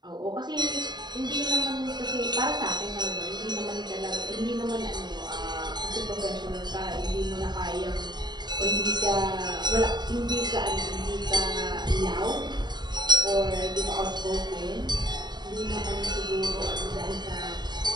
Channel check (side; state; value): left; late; 0.21 ms